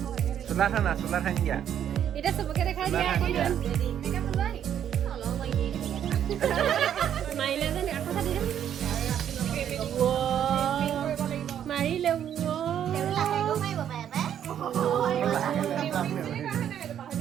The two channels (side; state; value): left; quieter; 9.7 dB